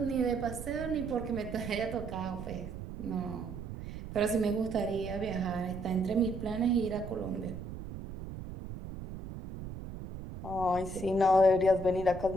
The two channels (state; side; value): noise; right; rumble, 9 dB below the sound